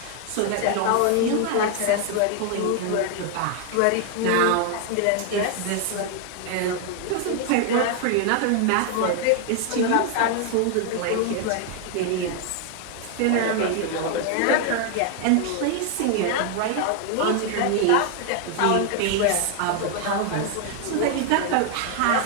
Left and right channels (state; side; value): different; both; correlation 0.00